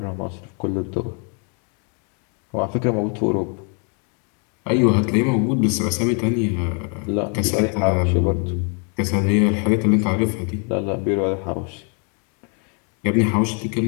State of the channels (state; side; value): quieter; right; 38.6 dB